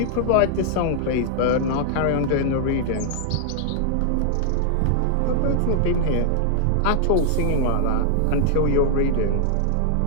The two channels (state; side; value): different; both; correlation -0.01